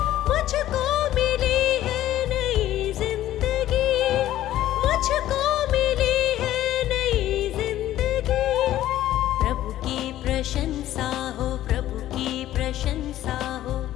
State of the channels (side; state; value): right; quieter; 13.5 dB